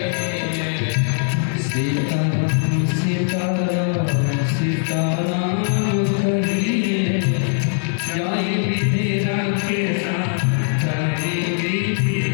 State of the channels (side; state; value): right; silent; 65 dB below the other